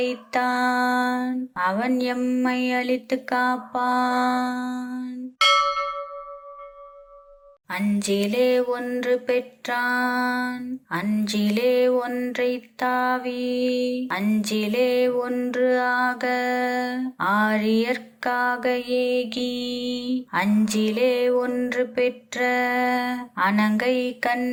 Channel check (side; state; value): both; identical; correlation 1.00